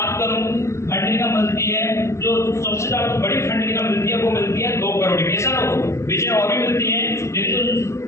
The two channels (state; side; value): late; right; 0.13 ms